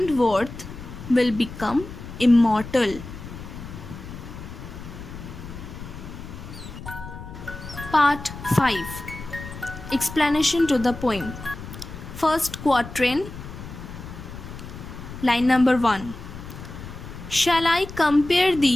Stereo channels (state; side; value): noise; left; rumble, 12 dB below the sound